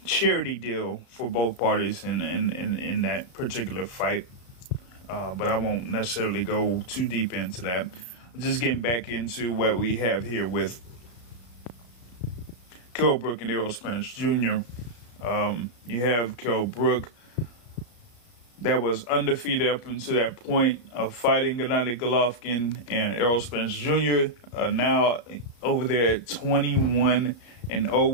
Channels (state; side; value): late; right; 34 ms